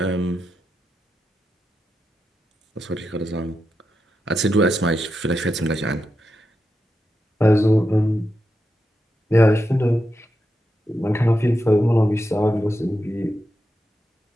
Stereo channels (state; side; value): normal; both; correlation 0.87